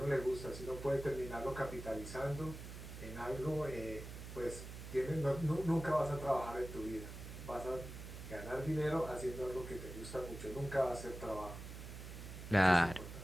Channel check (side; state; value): right; noise; hum, 10 dB below the sound